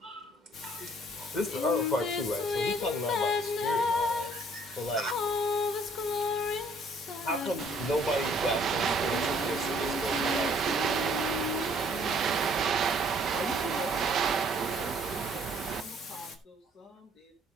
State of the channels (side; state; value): both; normal; correlation 0.60